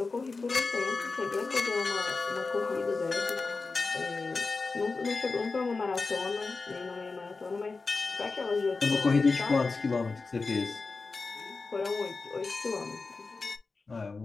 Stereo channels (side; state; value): right; quieter; 4.0 dB